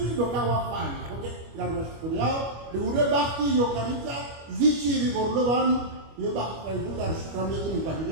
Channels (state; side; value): late; left; 25 ms